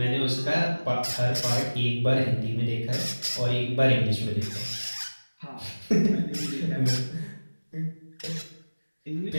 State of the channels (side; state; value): both; inverted; correlation -1.00